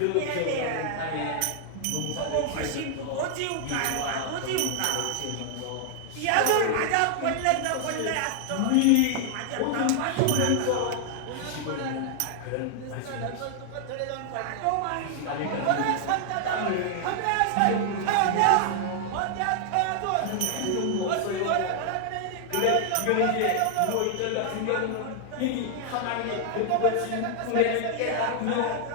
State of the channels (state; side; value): different; both; correlation 0.00